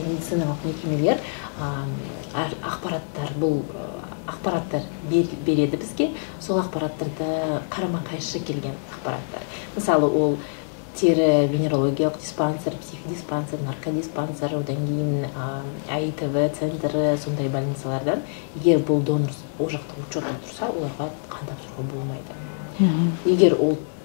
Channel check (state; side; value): silent; right; digital silence